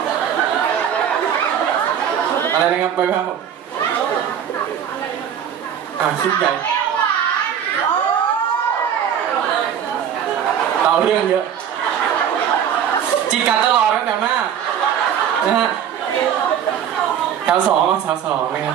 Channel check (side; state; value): left; quieter; 8.9 dB